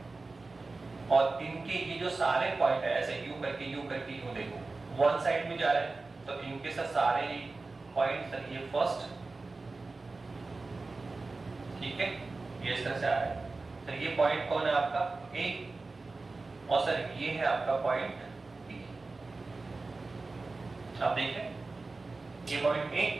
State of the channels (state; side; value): quieter; left; 3.6 dB